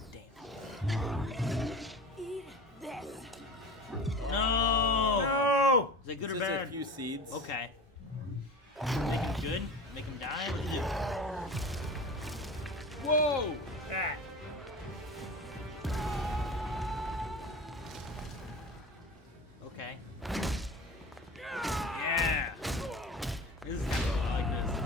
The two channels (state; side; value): normal; both; correlation 0.34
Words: Damn. Eat this. No. No. Is that good Just or bad? a few seeds. Okay. Make him good? Make him die? What is it? Whoa! Ah. Okay. Yeah. This is I like